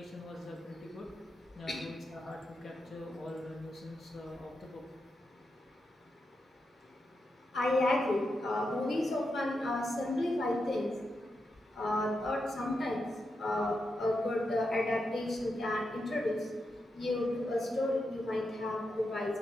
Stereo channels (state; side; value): normal; both; correlation 0.86